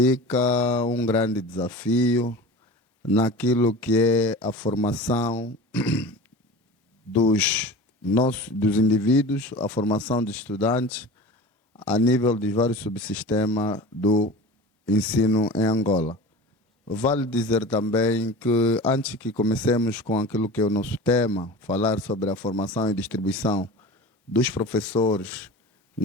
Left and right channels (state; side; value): normal; both; correlation 0.35